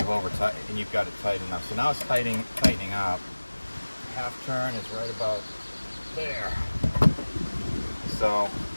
got it tight enough. So now it's tightening up. Half turn is right about there. So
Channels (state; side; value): inverted; both; correlation -1.00